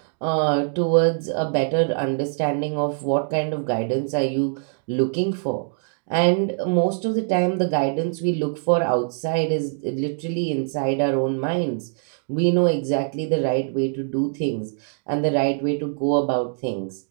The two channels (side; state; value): left; silent; digital silence